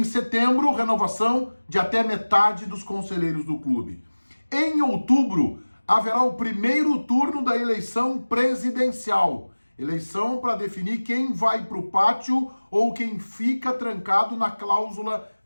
setembro, renovação de até metade dos conselheiros do clube. Em outubro, haverá o primeiro turno da eleição presidencial. Eleição para definir quem vai para o pátio ou quem fica trancado na cláusula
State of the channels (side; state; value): both; inverted; correlation -1.00